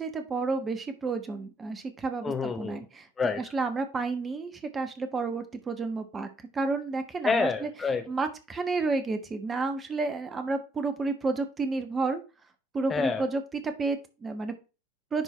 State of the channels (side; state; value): both; normal; correlation 0.76